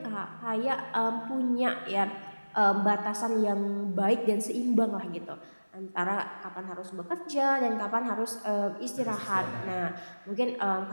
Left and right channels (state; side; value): inverted; both; correlation -1.00